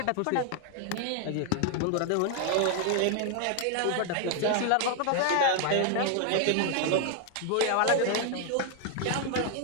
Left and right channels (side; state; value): both; different; correlation 0.00